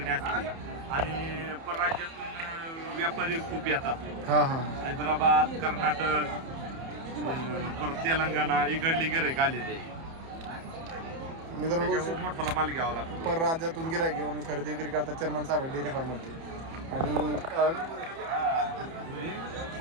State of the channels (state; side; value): late; left; 30 ms